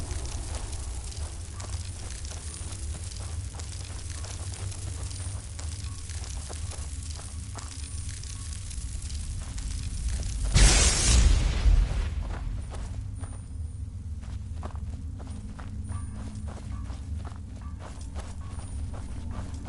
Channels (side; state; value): both; identical; correlation 1.00